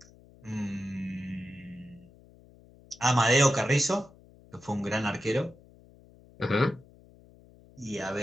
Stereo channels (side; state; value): left; noise; hum, 25 dB below the sound